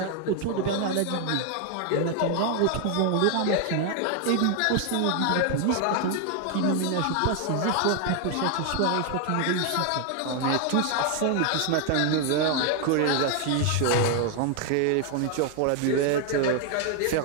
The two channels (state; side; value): different; both; correlation 0.01